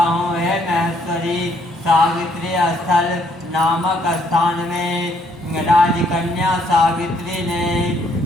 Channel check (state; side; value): normal; both; correlation 0.68